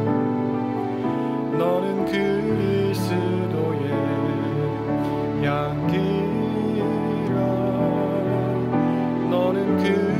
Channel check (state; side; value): identical; both; correlation 1.00